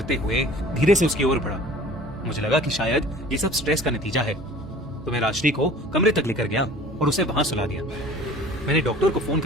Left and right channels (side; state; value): both; normal; correlation 0.46